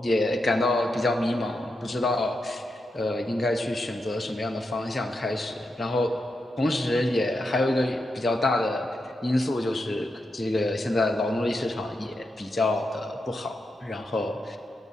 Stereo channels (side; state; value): both; normal; correlation 0.86